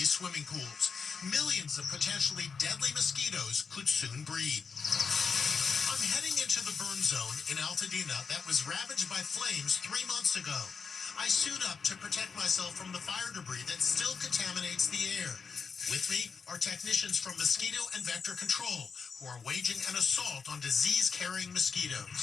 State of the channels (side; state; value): right; quieter; 5.6 dB